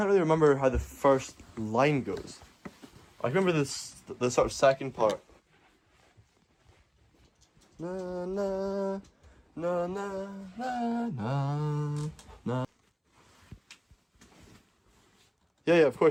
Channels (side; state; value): both; identical; correlation 1.00